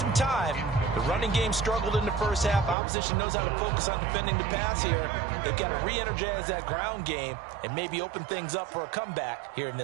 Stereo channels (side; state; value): left; drops out; at 2.8 s